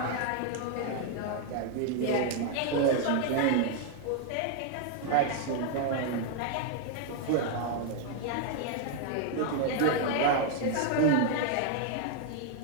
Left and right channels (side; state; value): both; different; correlation 0.00